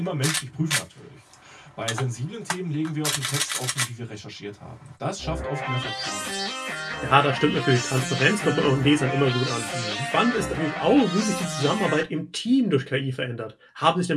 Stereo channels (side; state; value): both; identical; correlation 1.00